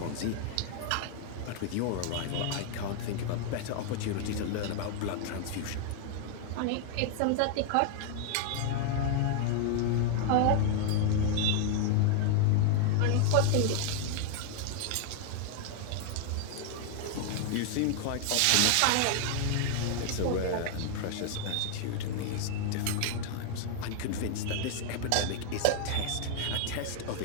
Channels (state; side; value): different; both; correlation 0.00